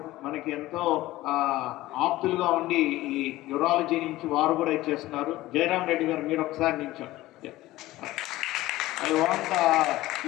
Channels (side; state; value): right; quieter; 17.0 dB